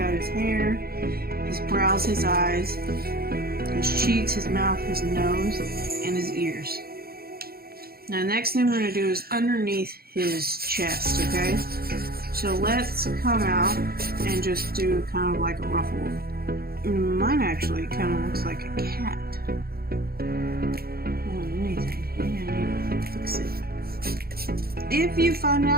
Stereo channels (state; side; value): late; left; 0.44 ms